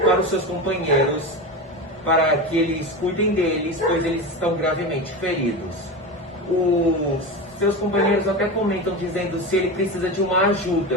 para os seus companheiros para que eles cuidem deles, pois eles estão gravemente feridos. Os seus companheiros até comentam dizendo se ele precisa de uma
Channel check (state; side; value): normal; both; correlation 0.23